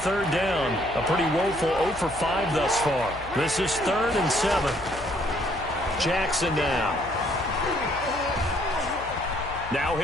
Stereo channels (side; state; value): left; noise; hum, 15 dB below the sound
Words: down, a pretty woeful 0 for 5 thus far. This is 3rd and 7. Jackson now. Now